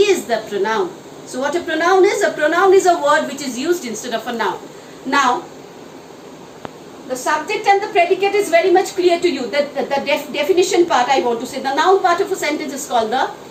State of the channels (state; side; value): identical; both; correlation 1.00